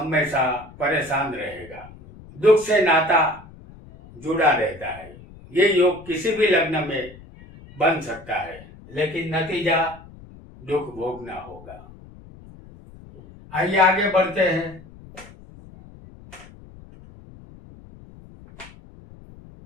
परेशान रहेगा, दुख से नाता जुड़ा रहता है। ये योग किसी भी लग्न में बन सकता है, लेकिन नतीजा दुख भोगना होगा। आइए आगे बढ़ते हैं।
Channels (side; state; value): left; noise; rumble, 20 dB below the sound